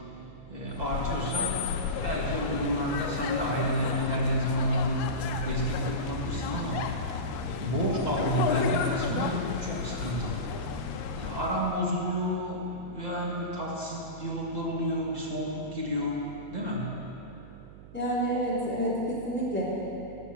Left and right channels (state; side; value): noise; right; hum, 17 dB below the sound